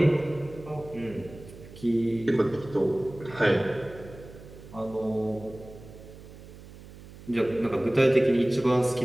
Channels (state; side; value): noise; right; hum, 18 dB below the sound